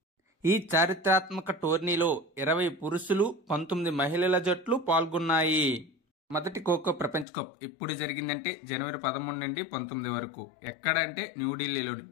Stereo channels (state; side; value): drops out; right; at 7.2 s